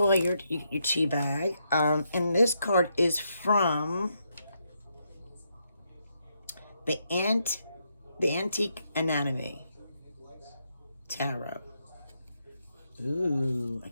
your tea bag. And this card is from the Antique Anatomy Tarot. Ooh, I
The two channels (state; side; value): inverted; both; correlation -0.79